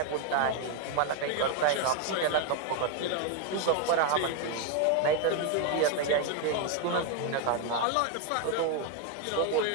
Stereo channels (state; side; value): different; both; correlation 0.01